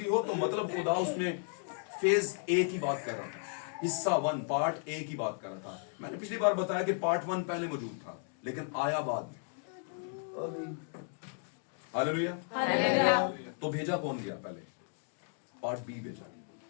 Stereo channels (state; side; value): silent; right; 55 dB below the other